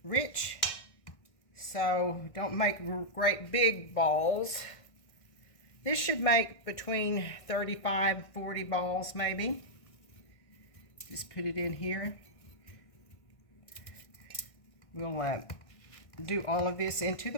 rich. So don't make great big balls. This should make between 35 and 40 balls maybe. Just put it in here. We'll do all of this into the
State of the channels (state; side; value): late; right; 1.6 ms